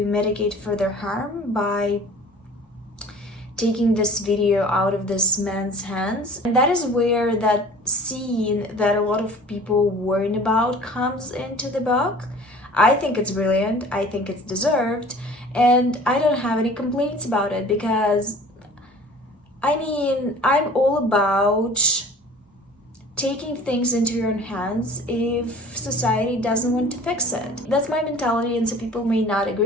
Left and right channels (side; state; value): both; normal; correlation 0.45